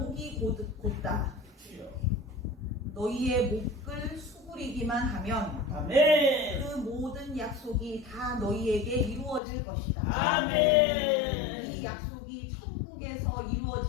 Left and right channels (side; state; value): right; drops out; at 9.4 s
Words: 곧다. 너희의 목을 수그리기만 하면 그 모든 약속이 다 너희에게 이루어질 것이다. 이 약속이 천국에서